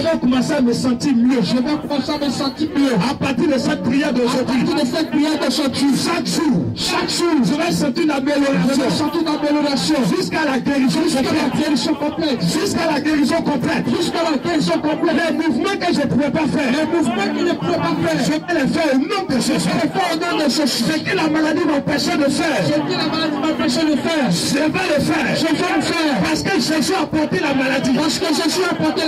commencer à me sentir mieux. je vais commencer à me sentir mieux. À partir de cette prière À d'aujourd'hui, partir de cette prière d'aujourd'hui, chaque jour, je vais sentir une je vais amélioration sentir une amélioration jusqu'à la guérison jusqu'à la complète. guérison complète. Jusqu'à la guérison complète. Jusqu'à la guérison complète. Les mouvements que je ne pouvais pas faire, Les mouvements qu'il ne pouvait pas faire, je vais les faire au nom de Jésus. je vais faire au nom de Jésus. Ce que la maladie m'empêchait de faire, Ce que la maladie m'empêchait de faire, je vais le faire. je vais le faire. Parce que Jésus a porté la maladie. Parce que Jésus Jésus a porté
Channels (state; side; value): identical; both; correlation 1.00